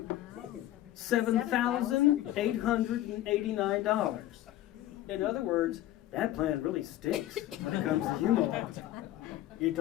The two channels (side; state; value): right; quieter; 14.1 dB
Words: $7,889. In other words, that plan really stinks when it comes to Greenwald. You